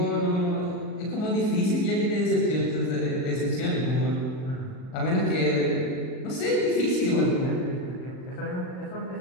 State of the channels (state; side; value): late; right; 39 ms